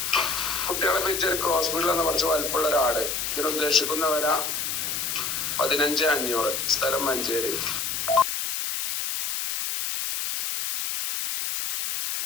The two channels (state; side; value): noise; left; hiss, 2 dB below the sound